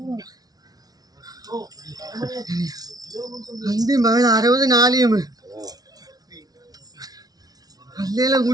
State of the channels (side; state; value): left; late; 0.19 ms